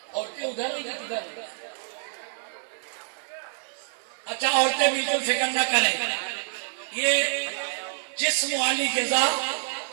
عورتیں ادھر ہی ادھر۔ اچھا عورتیں بالکل فکر نہ کریں، یہ جسم والی غذا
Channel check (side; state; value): left; silent; 57 dB below the other